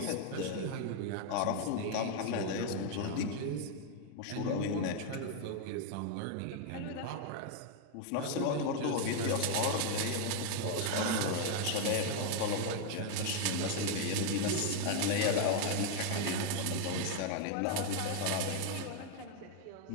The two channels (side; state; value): both; different; correlation 0.00